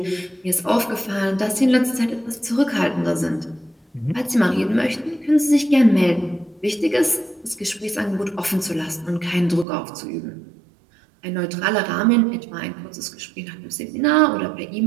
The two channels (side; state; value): left; drops out; at 9.7 s